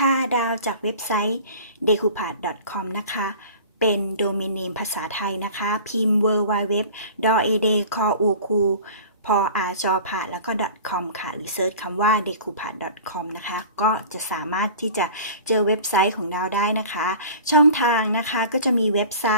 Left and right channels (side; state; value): both; inverted; correlation -0.41